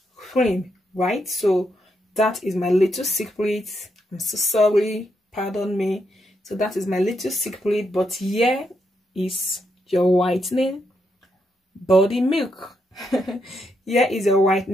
cream, right? So that is my little secret. I'm so sorry, pardon me. So that is my little secret, but here is your whitening body milk. Here is a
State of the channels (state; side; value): normal; both; correlation 0.80